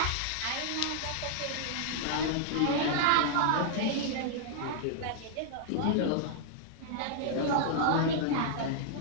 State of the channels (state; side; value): different; both; correlation -0.01